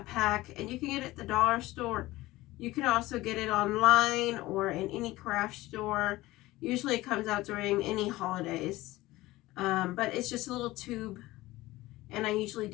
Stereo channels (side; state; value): right; quieter; 18.3 dB